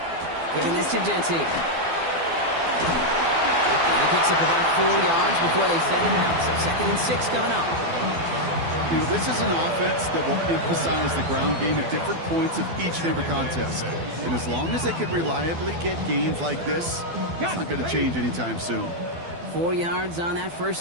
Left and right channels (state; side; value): late; left; 12 ms